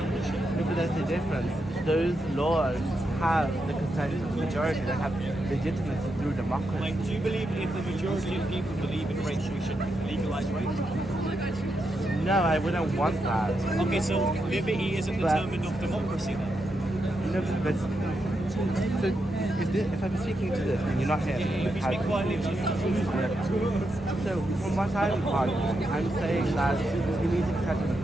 bullshit? But there's a difference. Those laws have the consent of the majority. They have legitimacy through democracy. Like, do you believe if the majority of people believe in rape, we should legalize rape? No, I wouldn't want that. Okay, so liberty isn't determined of democracy then? No, but so if I'm speaking to this and you're not here, If you speak quietly, so from what I'm arguing, I'm saying that we need to protect the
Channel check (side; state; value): both; normal; correlation 0.84